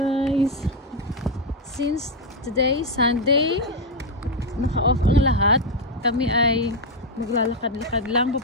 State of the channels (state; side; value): normal; both; correlation 0.03